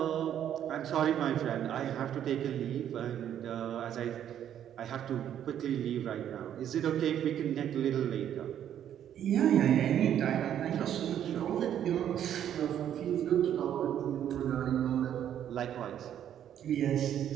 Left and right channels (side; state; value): left; quieter; 10.2 dB